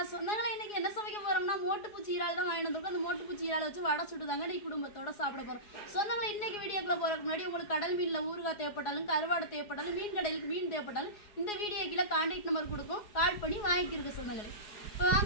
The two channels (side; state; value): right; late; 4.8 ms